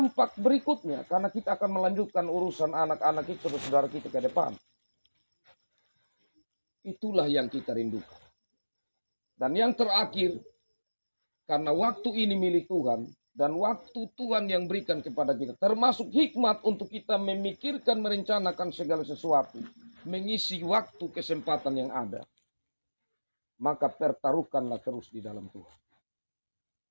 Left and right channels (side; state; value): both; inverted; correlation -1.00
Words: berikutnya. Karena kita akan melanjutkan urusan anak-anak itu, saudara kita ke depan. Itulah yang kita rindukan. Dan yang terakhir, karena waktu ini milik Tuhan, dan waktu Tuhan yang berikan kepada kita, termasuk hikmat untuk kita memikirkan, merencanakan segala sesuatu, mengisi waktu kesempatan yang ada, maka pertaruhkanlah terus di dalam Tuhan.